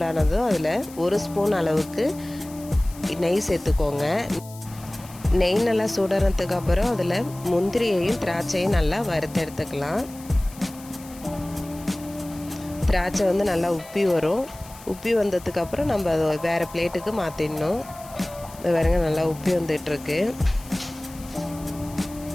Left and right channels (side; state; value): left; noise; hiss, 19 dB below the sound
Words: அதில் 1 ஸ்பூன் அளவுக்கு நெய் சேர்த்துக்கோங்க. நெய் நல்லா சூடானதுக்கு அப்புறம் அதில் முந்திரியையும் திராட்சையும் நல்லா வறுத்து எடுத்துக்கலாம். திராட்சை நல்லா உப்பி வரும். உப்பி வந்ததுக்கப்புறம் நம்ம அதை வேறு பிளேட்டுக்கு மாற்றிடணும். இது பாருங்க, நல்லா உப்பி வந்துட்டுருக்கு.